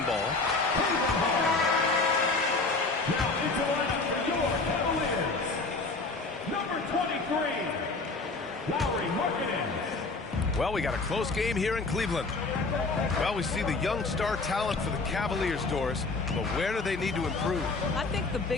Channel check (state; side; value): quieter; right; 3.7 dB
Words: ball. Now into the lineup for your Cavaliers. Number 23, Lauri Markkanen. Well, we got a close game here in Cleveland. Well, we see the young star talent for the Cavaliers, Doris, but where do they need to improve? I think the